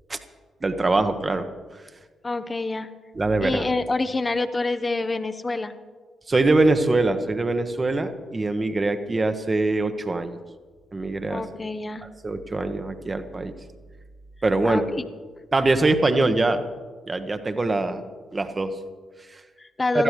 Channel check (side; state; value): both; normal; correlation 0.92